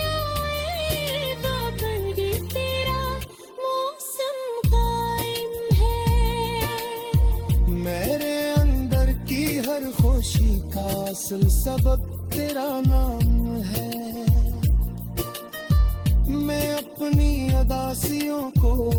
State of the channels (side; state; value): both; identical; correlation 1.00